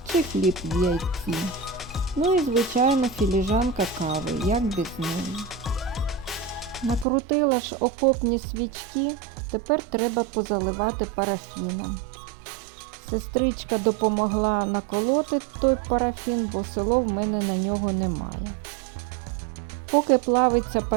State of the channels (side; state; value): left; drops out; at 7.1 s